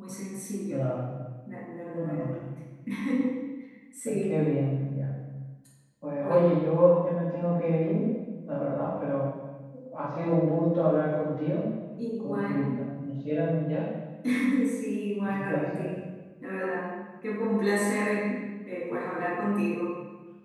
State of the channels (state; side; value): identical; both; correlation 1.00